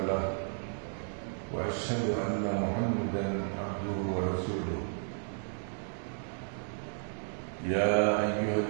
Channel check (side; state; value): left; silent; 56 dB below the other